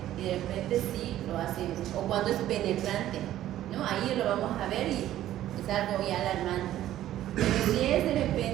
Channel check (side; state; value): left; quieter; 13.1 dB